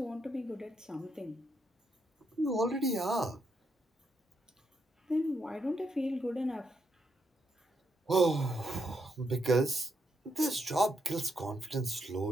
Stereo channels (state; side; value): normal; both; correlation 0.79